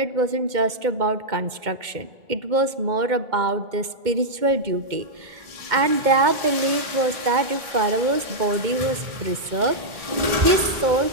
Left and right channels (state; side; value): late; left; 2.1 ms